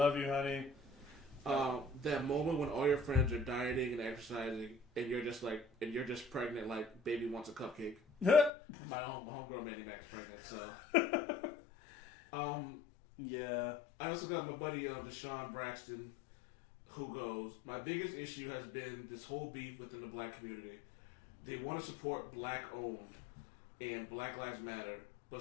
you, honey. That moment when all your friends are dieting and exercising, and you're just pregnant, like baby wants a cupcake. My homegirl Mandy Mac is pregnant, so. Yeah. I also got my buddy Deshaun Braxton, who goes, my biggest issue has been this whole beef within the black community. They want to support black owned and Black Lives Matter,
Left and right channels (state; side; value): drops out; right; at 8.5 s